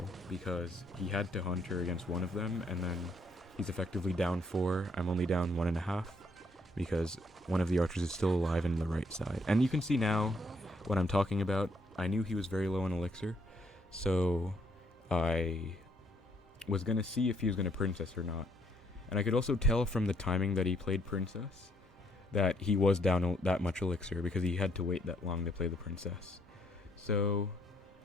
because he had to Hunter against one of them, and then he's effectively down 4, I'm only down 1.5, because one of the archers is still alive in the right side. And you can see now what I'm talking about. I knew he was very low on elixir, so I was going to see if he was going to princess or not. And I could also tell from the timing that he played princess that he was down that much elixir, because he had to wait that long to play the princess. So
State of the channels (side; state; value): both; normal; correlation 0.70